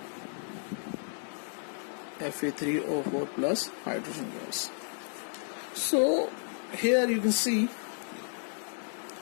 Fe3O4 plus hydrogen gas. So here you can see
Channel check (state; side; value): silent; right; digital silence